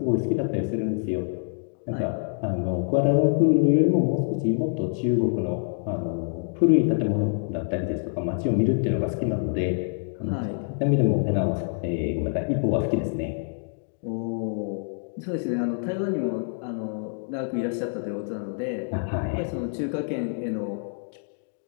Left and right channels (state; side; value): silent; right; digital silence